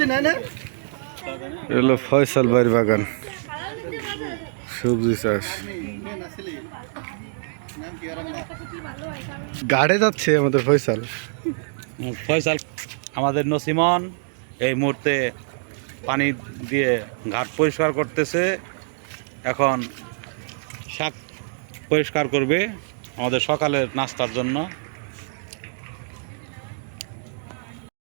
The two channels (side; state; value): left; silent; digital silence